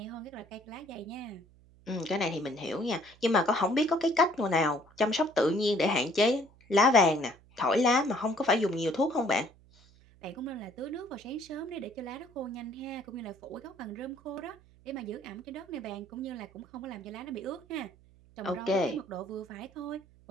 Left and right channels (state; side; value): noise; right; hum, 27 dB below the sound